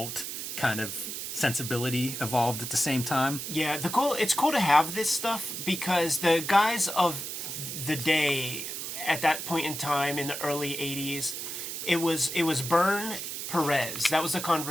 kind of sensibility evolved at the same time. Yeah, it's cool to have this stuff because the guys of the day at that point in time in the early 80s, it was Byrne, Pérez. That was the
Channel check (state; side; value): noise; right; hiss, 6 dB below the sound